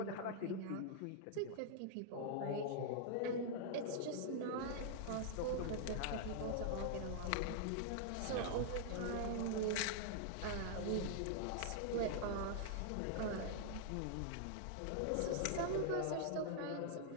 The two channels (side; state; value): both; different; correlation -0.01